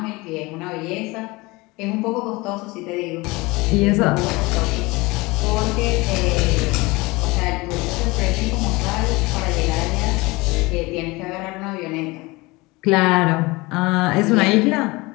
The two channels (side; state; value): right; quieter; 23.1 dB